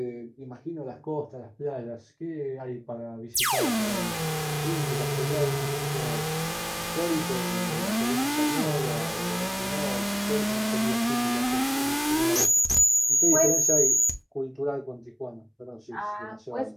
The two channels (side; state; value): both; identical; correlation 1.00